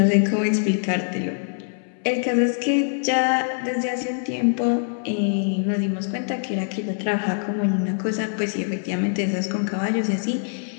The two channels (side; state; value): right; silent; 63 dB below the other